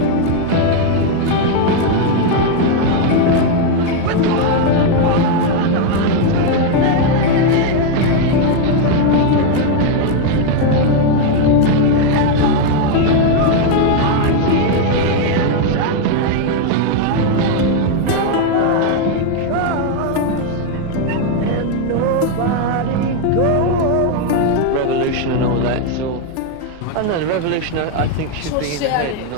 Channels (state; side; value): different; both; correlation 0.01